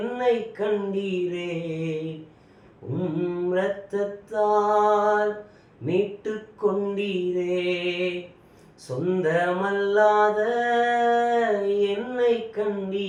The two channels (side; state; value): both; identical; correlation 1.00